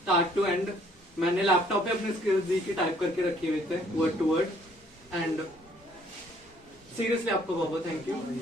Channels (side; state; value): both; normal; correlation 0.62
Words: टू एंड। मैंने लैपटॉप पे अपने स्किल्स दी की टाइप करके रखे हुए थे word to word. And seriously आपको बहुत बहुत थैंक यू।